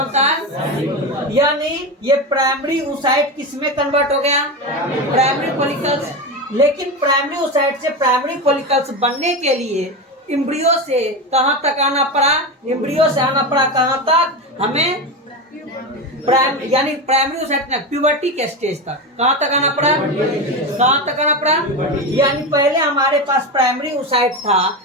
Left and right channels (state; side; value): normal; both; correlation 0.19